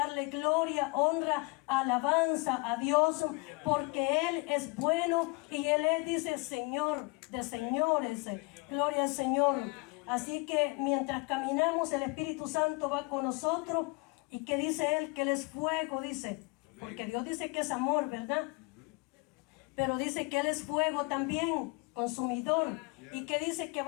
gloria, honra, alabanza a Dios, porque Él es bueno y Él es, dice, Señor de señores. Gloria al Señor. Así que mientras caminamos, el Espíritu Santo va con nosotros. ¿Y qué dice Él? Que Él es fuego, dice. Porque Dios dice que es amor, ¿verdad? Pero dice que Él es fuego también, consumidor. Y que dice que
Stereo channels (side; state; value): right; quieter; 26.5 dB